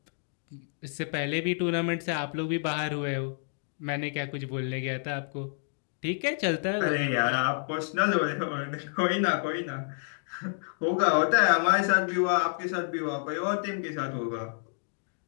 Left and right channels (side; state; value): right; silent; digital silence